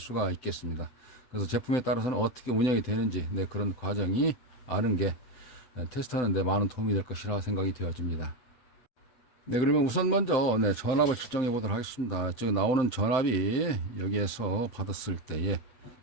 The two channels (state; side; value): late; right; 8.2 ms